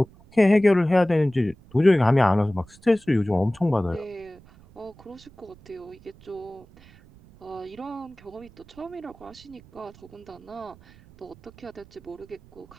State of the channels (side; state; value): right; noise; rumble, 24 dB below the sound